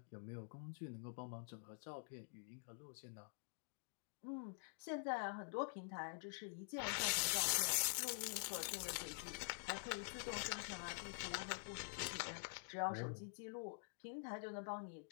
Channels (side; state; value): right; silent; digital silence